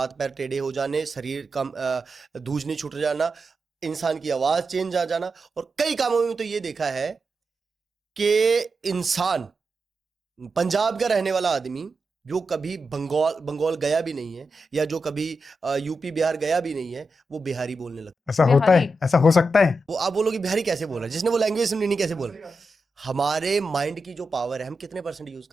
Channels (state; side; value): normal; both; correlation 0.88